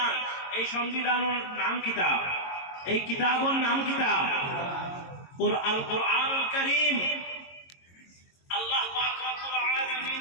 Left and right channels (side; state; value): right; late; 22 ms